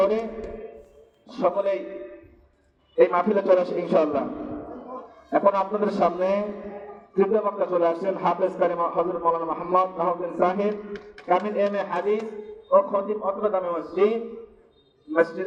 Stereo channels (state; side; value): identical; both; correlation 1.00